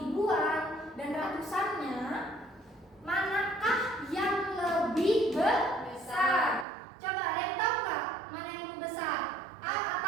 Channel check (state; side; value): drops out; left; at 6.7 s